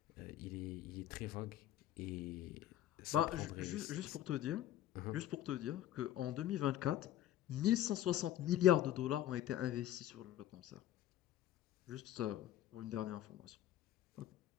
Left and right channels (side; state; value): right; quieter; 12.4 dB